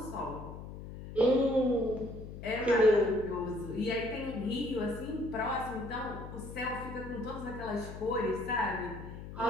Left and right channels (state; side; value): noise; left; hum, 11 dB below the sound